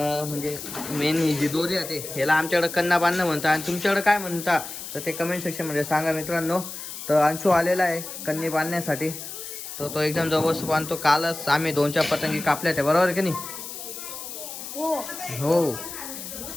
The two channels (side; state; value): left; noise; hiss, 9 dB below the sound